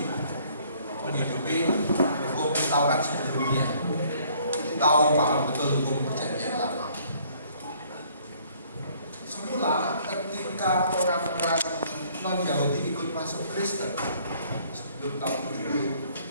menghidupi hukum Taurat sebelumnya. Kita tahu paham betul hukum perjanjian lama. Semula ketika orang-orang non-Yahudi ikut masuk Kristen sebelum tahun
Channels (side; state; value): both; inverted; correlation -0.60